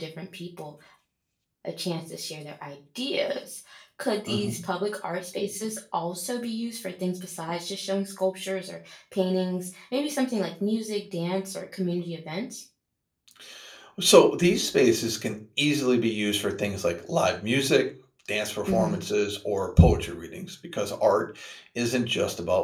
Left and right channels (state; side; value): identical; both; correlation 1.00